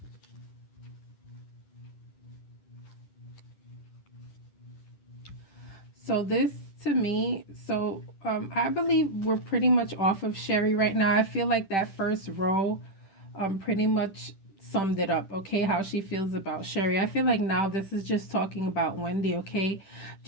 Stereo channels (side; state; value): right; late; 10 ms